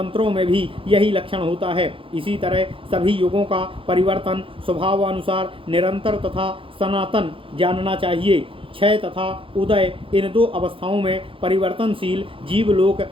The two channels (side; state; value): left; late; 0.26 ms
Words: में भी यही लक्षण होता है। इसी तरह सभी युगों का परिवर्तन स्वभावानुसार निरंतर तथा सनातन जानना चाहिए। क्षय तथा उदय इन दो अवस्थाओं में परिवर्तनशील जीवलोक